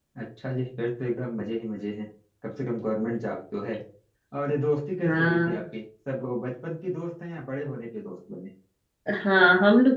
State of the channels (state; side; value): identical; both; correlation 1.00